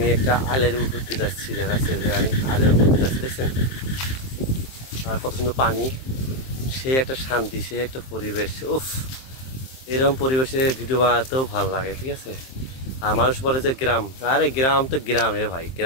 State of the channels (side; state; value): right; late; 23 ms